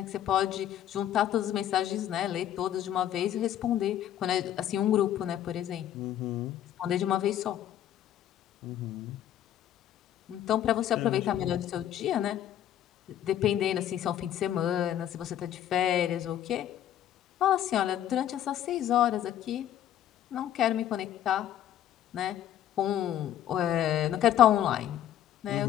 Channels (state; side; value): quieter; right; 11.3 dB